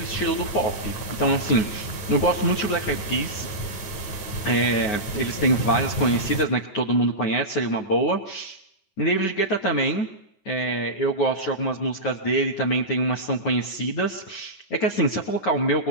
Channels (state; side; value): late; right; 9.5 ms